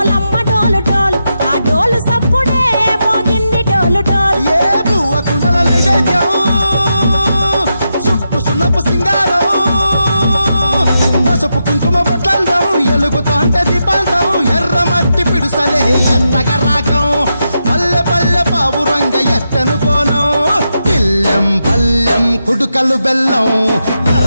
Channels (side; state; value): both; inverted; correlation -0.86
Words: డోలు డోల్ ఆ డోలు సప్పుడే మోగింది డోలు డోల్. ఏ బువ్వ కుండల నైవేద్యం చుట్టు సున్నపు సింగారం పసుపు కుంకుమ బొట్లందం ఎలుగుతాంటే దీపాంతం ఎర్ర మట్టి పిడుసలే ఎత్తగ రాగం పల్లె పల్లె పావురంగ ఎత్తను కోనం తిల్లెం పల్లెం కుడుకలు బెల్లం